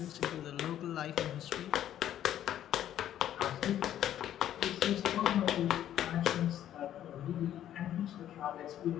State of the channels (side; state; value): right; quieter; 11.4 dB